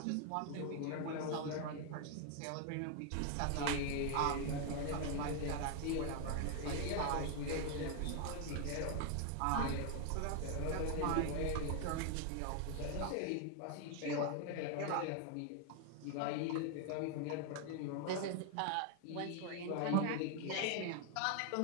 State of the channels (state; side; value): different; both; correlation 0.00